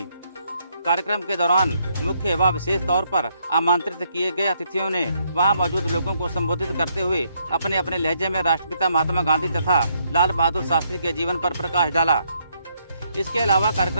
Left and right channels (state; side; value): inverted; both; correlation -0.73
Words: कार्यक्रम के दौरान मुख्य व विशेष तौर पर आमंत्रित किए गए अतिथियों ने वहां मौजूद लोगों को संबोधित करते हुए अपने अपने लहजे में राष्ट्रपिता महात्मा गांधी तथा लाल बहादुर शास्त्री के जीवन पर प्रकाश डाला। इसके अलावा